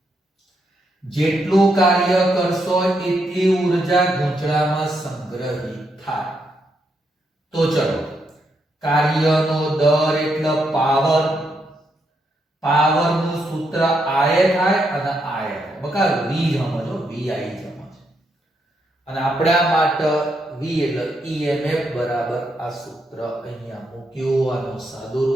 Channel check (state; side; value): normal; both; correlation 0.79